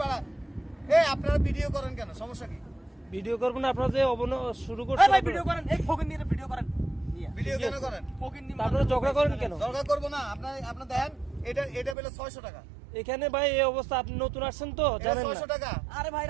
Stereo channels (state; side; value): drops out; left; at 12.0 s